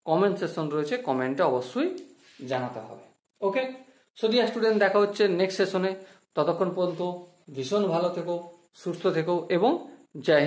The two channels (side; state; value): both; identical; correlation 1.00